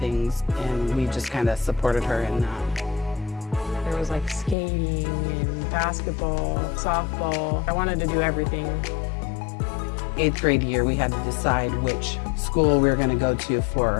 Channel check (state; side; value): drops out; right; at 4.5 s